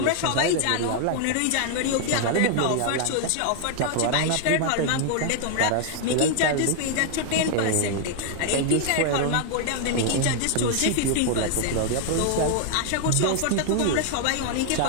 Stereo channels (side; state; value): both; different; correlation 0.00